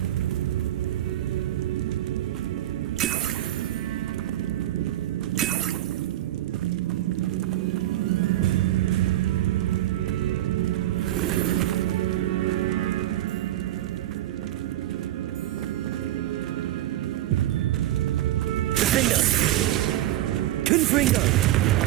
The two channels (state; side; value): quieter; left; 13.7 dB